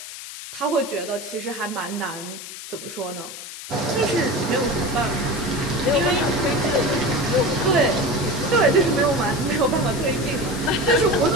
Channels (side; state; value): left; noise; hiss, 11 dB below the sound